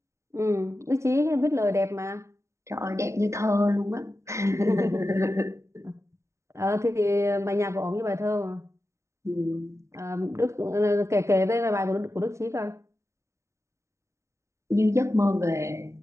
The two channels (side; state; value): left; late; 0.14 ms